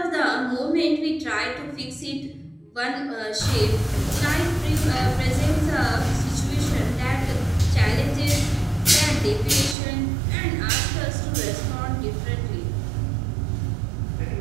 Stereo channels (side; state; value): left; drops out; at 9.8 s